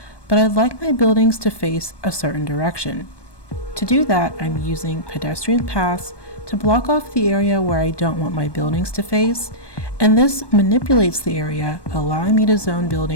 but I'd like my buildings to face a certain direction. To do that, I'm using pedestrian paths to block off the area where I don't want my buildings to face, and this manipulates the area, allowing me to zone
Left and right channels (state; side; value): late; right; 1.2 ms